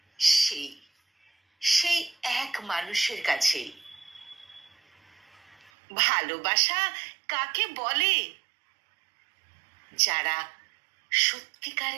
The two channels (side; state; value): left; drops out; at 5.7 s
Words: সেই সেই এক মানুষের কাছেই। ভালোবাসা কাকে বলে? যারা